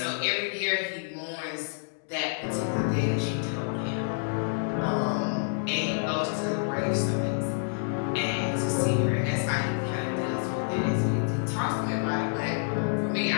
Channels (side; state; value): right; silent; digital silence